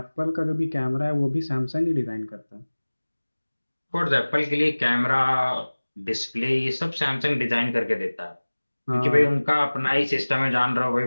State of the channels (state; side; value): inverted; both; correlation -1.00